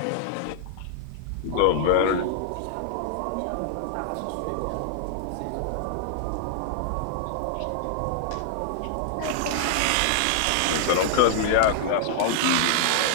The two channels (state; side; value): different; both; correlation -0.01